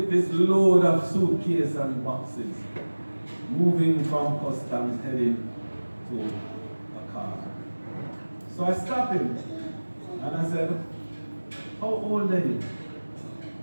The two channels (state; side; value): inverted; both; correlation -1.00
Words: this load of suitcase and boxes, moving from customs heading to a car. So I stopped him and I said, how old are you?